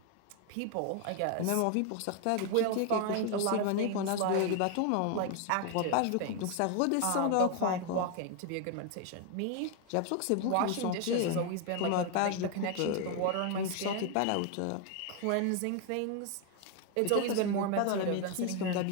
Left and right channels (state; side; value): different; both; correlation 0.01